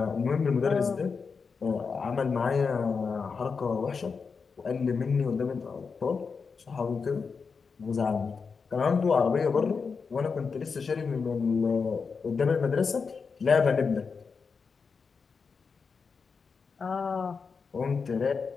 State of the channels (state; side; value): quieter; right; 5.3 dB